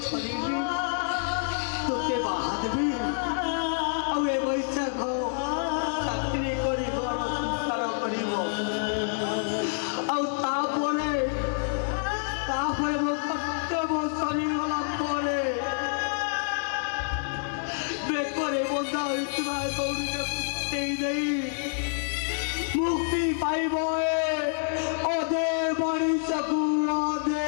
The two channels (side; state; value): right; silent; 60 dB below the other